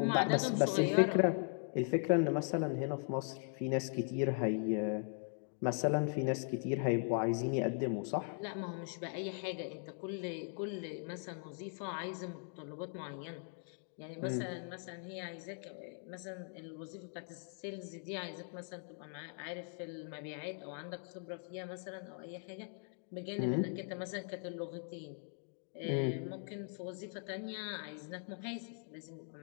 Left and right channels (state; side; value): silent; right; 51 dB below the other